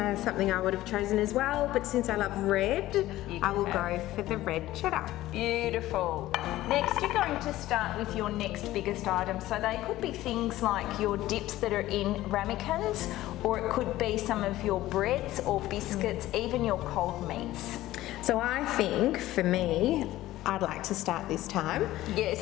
something I would have chosen as well, but since I love red, I will go for the red cheddar. Beautiful. Next, you're going to start with your next biggest item. So they could be things like your dips that are in ramekins, or it could be some of your breads or biscuits, even your cold meats. So I think, for me, I'd like to start this time. Yes.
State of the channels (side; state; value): right; quieter; 15.7 dB